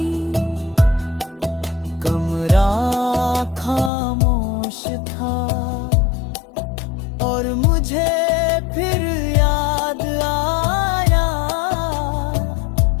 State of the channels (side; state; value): right; drops out; at 3.9 s